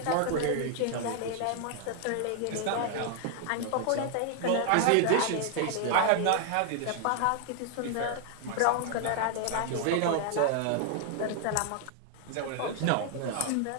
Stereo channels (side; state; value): both; different; correlation 0.00